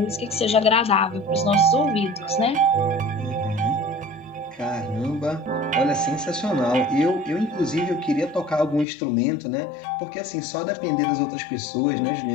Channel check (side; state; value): right; drops out; at 8.8 s